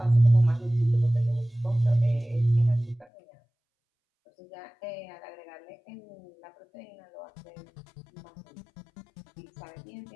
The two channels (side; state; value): right; drops out; at 3.1 s